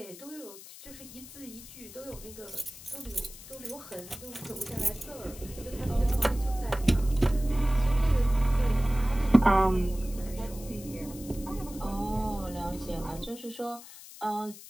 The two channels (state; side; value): noise; left; hiss, 16 dB below the sound